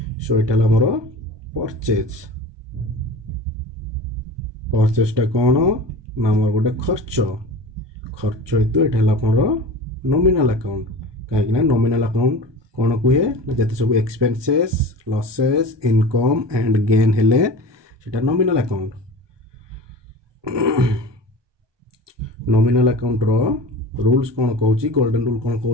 सो एटा हमर परचेज टा कोन ना हमर गोटे खर्च हेतु एटा हमर नॉमिनल अकाउंट काहे ना नॉमिनल अकाउंट कोन कुहे जते सब expenses losses income and gain हेले सेटा नॉमिनल अकाउंट नॉमिनल अकाउंट रो रूल्स कोन कहूची गोल्डन रूल कोन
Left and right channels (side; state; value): left; late; 1.2 ms